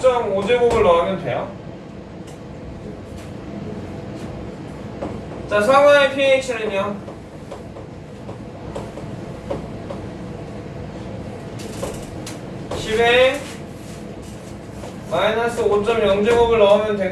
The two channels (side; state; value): both; identical; correlation 1.00